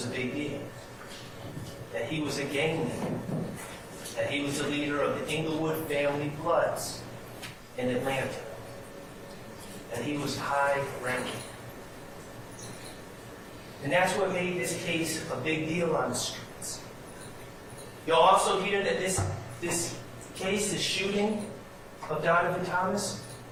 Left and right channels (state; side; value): identical; both; correlation 1.00